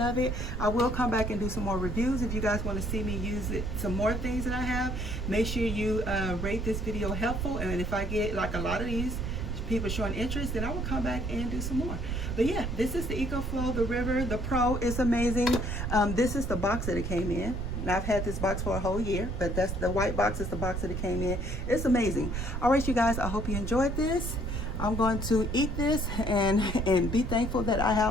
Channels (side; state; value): right; noise; rumble, 3 dB below the sound